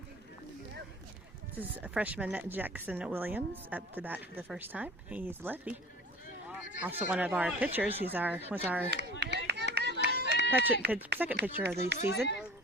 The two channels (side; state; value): both; normal; correlation 0.43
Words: This is a freshman Jackson Williams up to bat for the first time. He's lefty. Also one of our pitchers. Was our second pitcher of the season